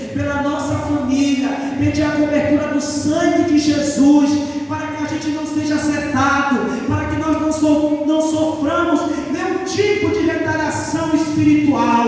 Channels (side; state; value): both; identical; correlation 1.00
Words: pela nossa família, pedir a cobertura do sangue de Jesus, para que a gente não seja afetado, para que nós não soframos nenhum tipo de retaliação